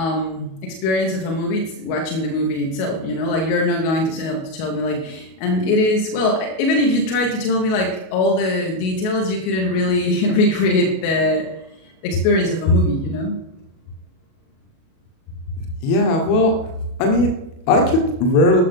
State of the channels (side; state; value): right; late; 37 ms